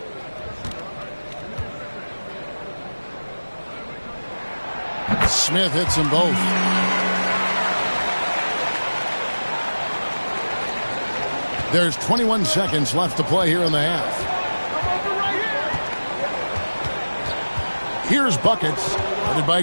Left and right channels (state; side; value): inverted; both; correlation -1.00